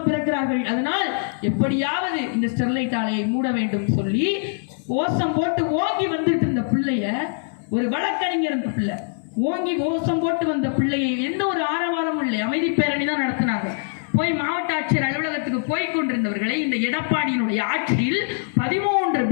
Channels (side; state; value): right; silent; 60 dB below the other